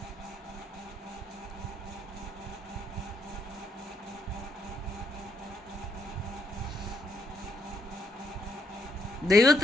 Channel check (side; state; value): both; normal; correlation 0.73